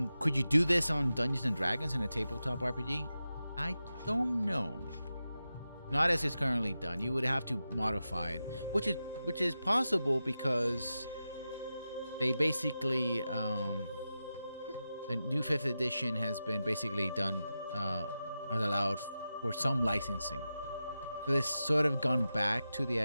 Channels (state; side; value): inverted; both; correlation -0.92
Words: could you do this on Dungeons and Dragons in a tabletop RPG? I don't know. Not as it's currently done. You would have to modify it, which is possible because they basically the new 5th edition has been basically done has allowed for some licensing. So it's sort of gone back to the